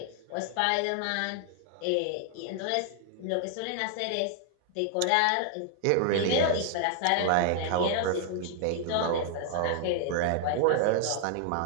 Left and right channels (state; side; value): different; both; correlation 0.00